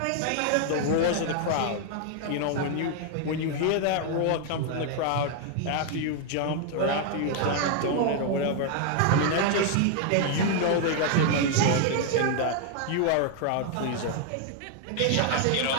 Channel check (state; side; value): different; both; correlation 0.00